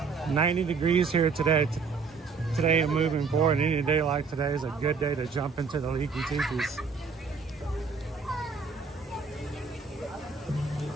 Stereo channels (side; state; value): left; quieter; 5.1 dB